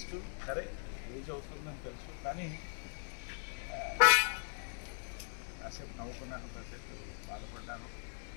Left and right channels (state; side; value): silent; right; 52 dB below the other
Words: సరే age అవుతుందని తెలుసు కానీ కాసేపు నవ్వుకున్నాను, కాసేపు బాధపడ్డాను.